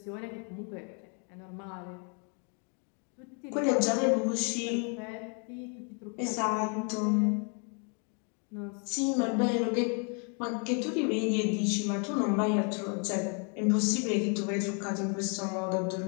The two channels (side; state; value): right; quieter; 38.7 dB